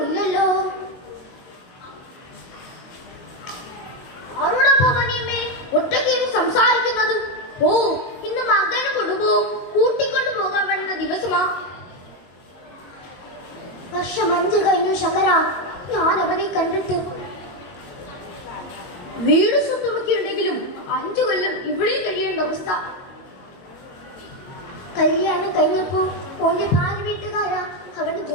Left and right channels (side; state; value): right; late; 22 ms